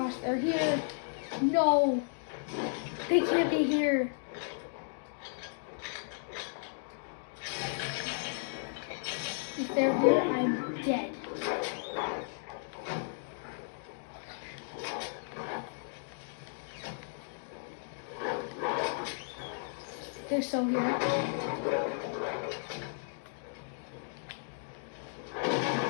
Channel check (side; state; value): right; silent; digital silence